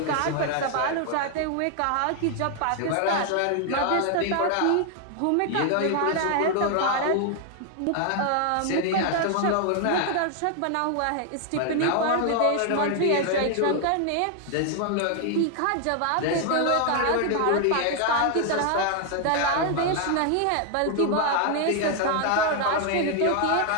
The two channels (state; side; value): different; both; correlation 0.00